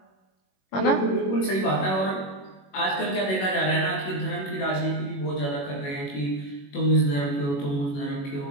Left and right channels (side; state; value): right; late; 21 ms